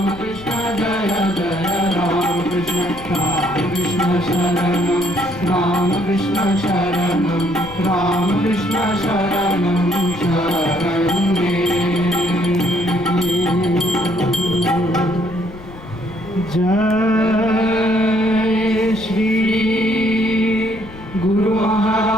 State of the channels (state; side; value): noise; left; rumble, 16 dB below the sound